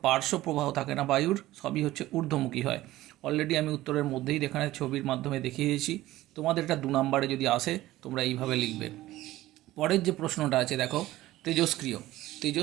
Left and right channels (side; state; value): left; quieter; 16.2 dB